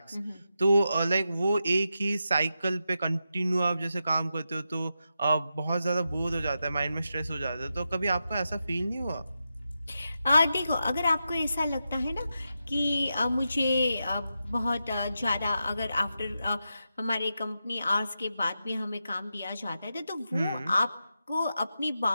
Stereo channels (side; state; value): both; inverted; correlation -0.88